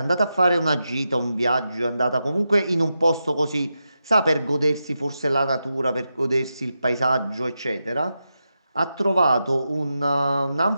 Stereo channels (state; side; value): inverted; both; correlation -0.88